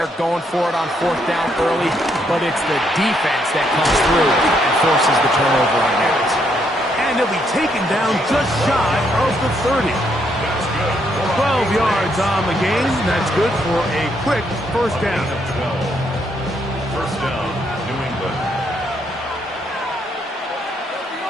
going for it on fourth down early. But it's the defense that comes through and forces the turnover on downs. And he'll be taken down just shy of the 30. 12 yards on the game. That's good for a quick first down. First down, New England.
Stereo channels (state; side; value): normal; both; correlation 0.74